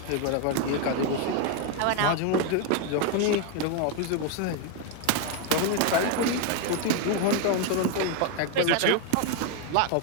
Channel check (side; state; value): both; different; correlation 0.01